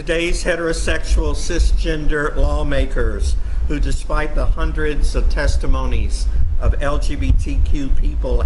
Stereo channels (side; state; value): both; identical; correlation 1.00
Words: heterosexual cisgender lawmakers who, despite the hundreds of testimonies of LGBTQ people